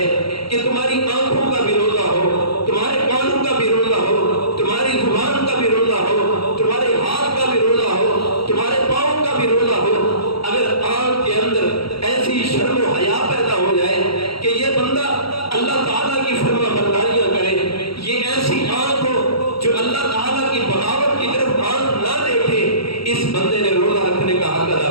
کہ تمہاری آنکھوں کا بھی روزہ ہو، تمہارے کانوں کا بھی روزہ ہو، تمہاری زبان کا بھی روزہ ہو، تمہارے ہاتھ کا بھی روزہ ہو، تمہارے پاؤں کا بھی روزہ ہو۔ اگر آنکھ کے اندر ایسی شرم و حیا پیدا ہو جائے کہ یہ بندہ اللہ تعالیٰ کی فرما برداریاں کرے، یہ ایسی آنکھ ہو جو اللہ تعالیٰ کی بغاوت کی طرف آنکھ نہ دیکھے، اس بندے نے روزہ رکھنے کا حق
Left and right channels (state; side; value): late; right; 0.75 ms